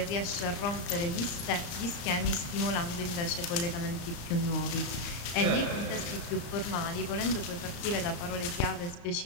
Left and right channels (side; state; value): right; late; 34 ms